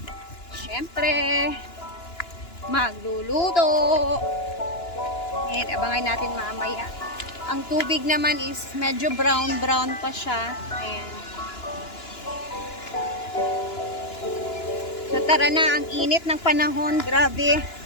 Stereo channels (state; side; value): late; right; 2.9 ms